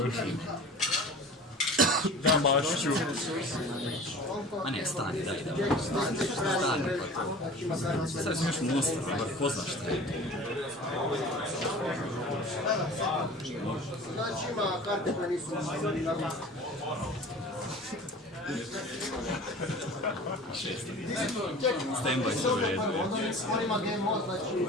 Da, Mašiću. A ne, stani, daj. Stani, pa to. Sad sam još monster, bar poznaš šta je. Znači ima karte koje nisu Stand-by se u redu. on ima game mode, znači...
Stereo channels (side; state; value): both; normal; correlation 0.40